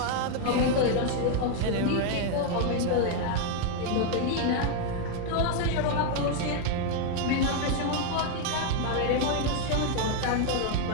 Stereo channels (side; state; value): both; different; correlation 0.00